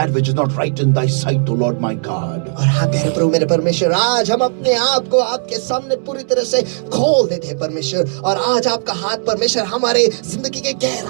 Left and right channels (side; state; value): left; silent; digital silence